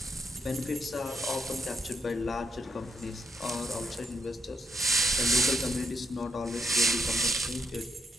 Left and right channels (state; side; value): normal; both; correlation 0.77